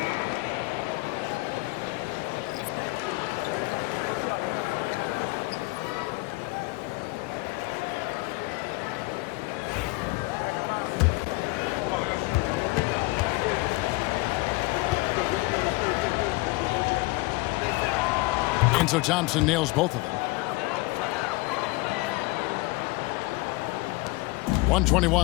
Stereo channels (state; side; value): quieter; right; 23.3 dB